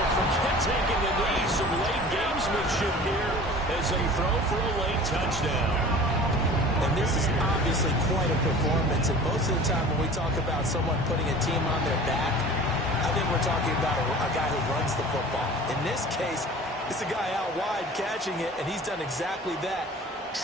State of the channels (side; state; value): both; normal; correlation 0.42